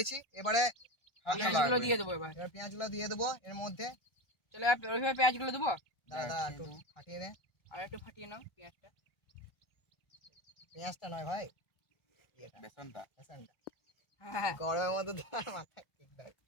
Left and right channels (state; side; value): late; right; 1.4 ms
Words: এবারে পেঁয়াজগুলো দিয়ে দেবো এবার। এবার পেঁয়াজগুলো দিয়ে দেবো এর মধ্যে। চলো এবার ওইভাবে পেঁয়াজগুলো দেবো। দাদা একটু ফাটিয়ে দে। আর একটু ফাটিয়ে নাও পেঁয়াজটা। পেঁয়াজটা নয় ভাই, বেসনটা। বেসনটা। হ্যাঁ গরমের মধ্যে তোমার মাথায় ঠিক দেয়।